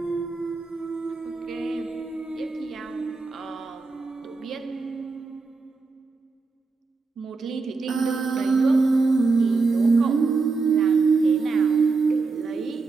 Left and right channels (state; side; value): quieter; left; 4.2 dB